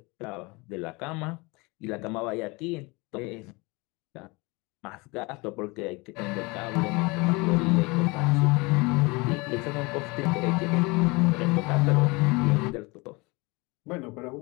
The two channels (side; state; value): right; quieter; 25.9 dB